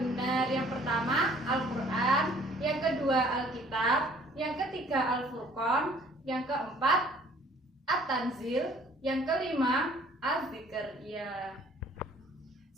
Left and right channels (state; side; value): normal; both; correlation 0.56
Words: Yang pertama Al-Quran, yang kedua Alkitab, yang ketiga Al-Furqan, yang keempat At-Tanzil, yang kelima Az-Zikr. Ya.